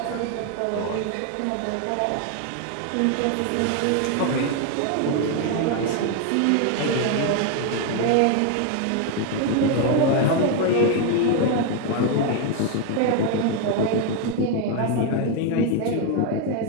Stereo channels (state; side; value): different; both; correlation 0.01